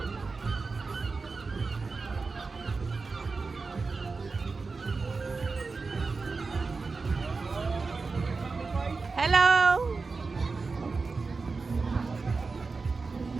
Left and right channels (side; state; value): left; quieter; 4.2 dB